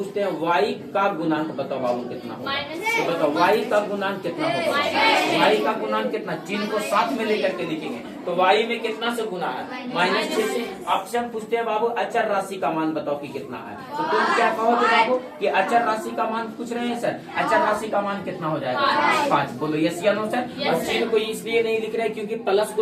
हैं y का गुणांक बताओ बाबू कितना होगा? तो बताओ y का गुणांक कितना होगा? y का गुणांक कितना? चिन्ह को साथ में लेकर के लिखेंगे। तो y में कितना से गुना है? -6 से। आपसे हम पूछते हैं बाबू अचर राशि का मान बताओ कि कितना है? तो तुम क्या कहोगे बाबू कि अचर राशि का मान पूछ रहे हैं सर? अचर राशि का मान कितना हो जाएगा? 5। बोलो यस या नो सर? और चिन्ह को इसलिए नहीं लिख रहे क्योंकि प्लस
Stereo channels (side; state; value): both; identical; correlation 1.00